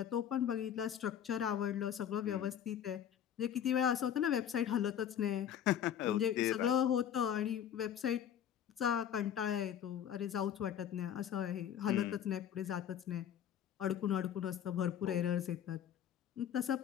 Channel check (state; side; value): quieter; right; 9.6 dB